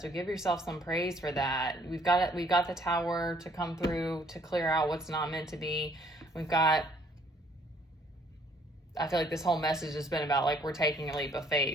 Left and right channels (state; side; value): normal; both; correlation 0.63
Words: give yourself some praise for that. We've got the Tower to come through to clear out what's not meant to be. I feel like this whole message has been about like, we're taking a leap of